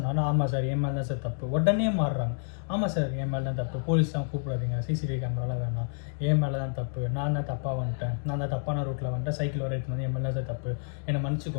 ஆமாம் சார் என் மேலே தான் சார் தப்பு. உடனே மாறுறாங்க, ஆமாம் சார் என் மேலே தான் தப்பு, போலீஸ்லாம் கூப்பிடாதீங்க, சிசிடிவி கேமராலாம் வேணாம், என் மேலே தான் தப்பு, நான் தான் தப்பாக வந்துட்டேன், நான் தான் தப்பான ரூட்டில் வந்துட்டேன், சைக்கிள் வர எடுத்து வந்து என் மேலே தான் சார் தப்பு, என்னை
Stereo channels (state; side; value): silent; right; digital silence